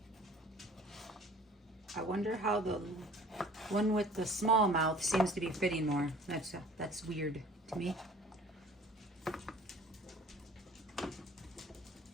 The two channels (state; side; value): normal; both; correlation 0.49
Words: I wonder how the one with the small mouth seems to be fitting more. That's weird to me.